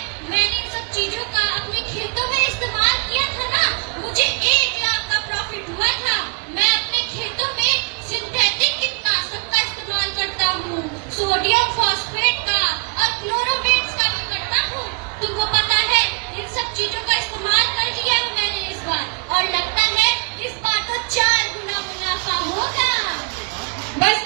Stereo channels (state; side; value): quieter; left; 34.5 dB